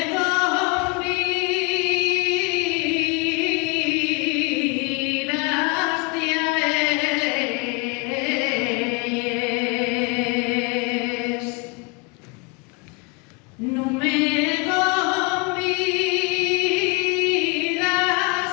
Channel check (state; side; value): quieter; right; 30.3 dB